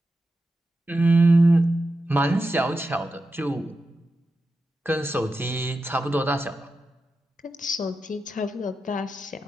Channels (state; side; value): normal; both; correlation 0.90